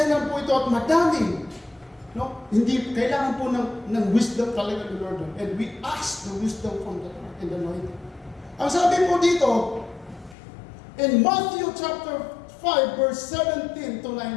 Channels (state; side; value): drops out; right; at 10.4 s